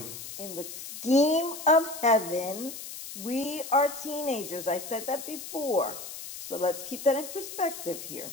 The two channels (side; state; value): left; noise; hiss, 10 dB below the sound